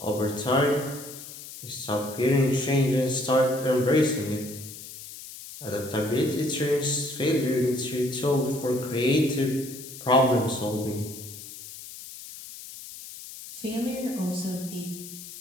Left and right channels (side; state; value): left; noise; hiss, 13 dB below the sound